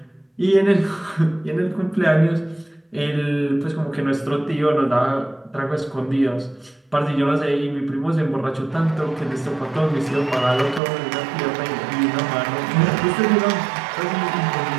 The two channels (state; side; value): drops out; left; at 10.8 s